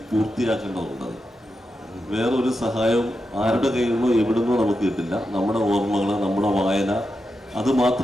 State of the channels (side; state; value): both; normal; correlation 0.88